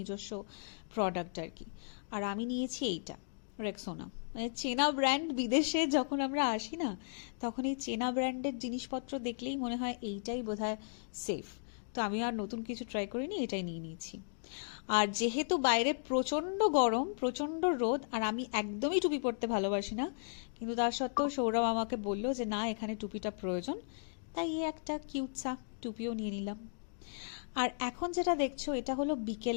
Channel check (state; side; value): silent; right; digital silence